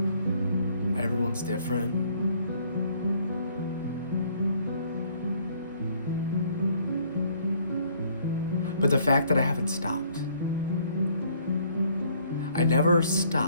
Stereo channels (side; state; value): both; inverted; correlation -0.63